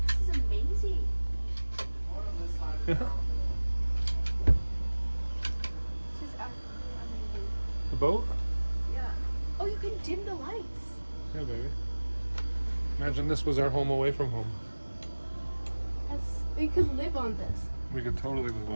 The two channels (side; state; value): both; inverted; correlation -1.00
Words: This is amazing. Yeah. This is absolutely amazing. The boat. Yeah. Oh, you can dim the lights. Yeah, baby. Imagine this was our home away from home. We could live on this. We could totally live